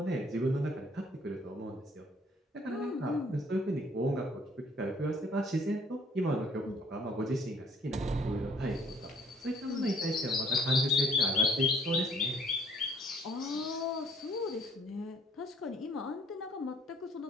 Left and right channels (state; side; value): normal; both; correlation 0.60